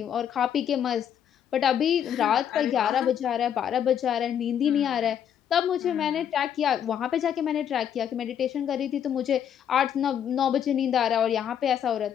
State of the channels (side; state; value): right; quieter; 9.1 dB